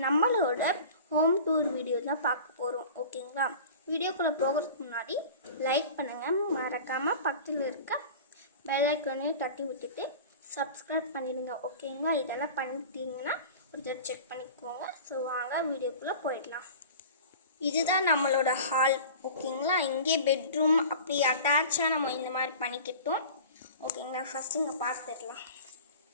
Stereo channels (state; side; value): inverted; both; correlation -0.39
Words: நம்மளோட ஹோம் டூர் வீடியோ தான் பார்க்க போகிறோம். ஓகேங்களா? வீடியோக்குள்ளே போகிறதுக்கு முன்னாடி லைக் பண்ணுங்கள், மறக்காமல் பக்கத்தில் இருக்க பெல் ஐக்கானையும் தட்டி விட்டுட்டு சப்ஸ்கிரைப் பண்ணிடுங்க. ஓகேங்களா? இதெல்லாம் பண்ணிட்டீங்கன்னா ஒரு தடவை செக் பண்ணிக்கோங்க. ஸோ வாங்க வீடியோக்குள்ளே போயிடலாம். இதுதான் நம்மளோட ஹால். ஓகேங்களா? இங்கே பெட்ரூம் அப்படி அட்டாச்சாக நம்ம இந்த மாதிரி பண்ணிக்கிட்டோம். ஓகேங்களா? ஃபஸ்ட்டு இங்கே பார்த்துடலாம்.